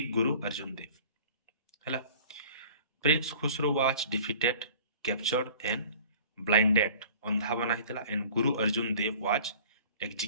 Guru Arjan Dev हला। Prince Khusro was defeated, captured and blinded, अंधा बना हितला, and Guru Arjun Dev was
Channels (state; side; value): inverted; both; correlation -0.47